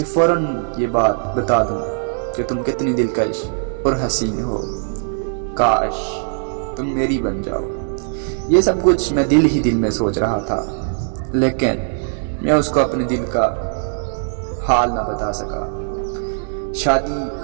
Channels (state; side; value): silent; left; digital silence